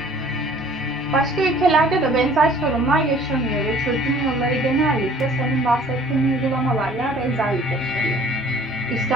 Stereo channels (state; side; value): normal; both; correlation 0.52